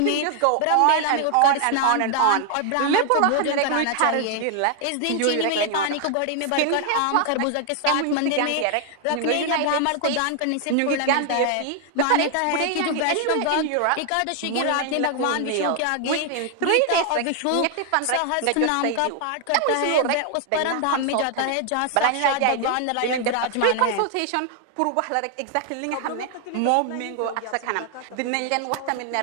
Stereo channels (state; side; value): different; both; correlation 0.00